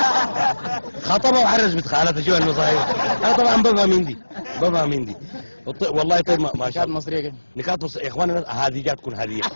خطبه وحرز بنت خالته. شو المصايب؟ انا طبعا بفهم هندي. والله طيب ما شاء الله. نكات مصرية كده. نكات مصرية يا اخوانا، هذه جات تكون هدية.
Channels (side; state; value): both; inverted; correlation -1.00